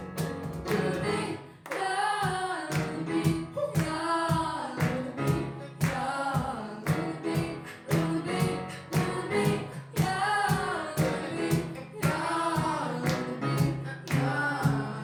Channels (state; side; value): identical; both; correlation 1.00